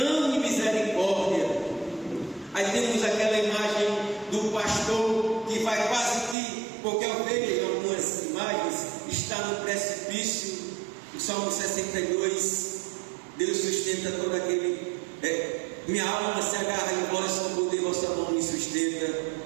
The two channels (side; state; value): left; drops out; at 6.4 s